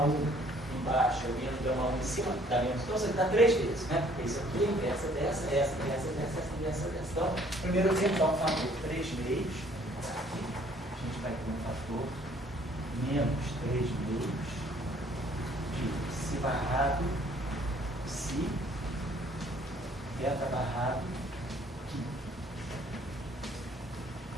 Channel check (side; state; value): both; normal; correlation 0.60